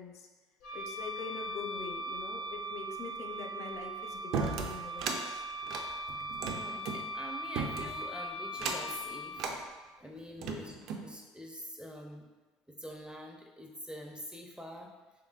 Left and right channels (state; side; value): normal; both; correlation 0.37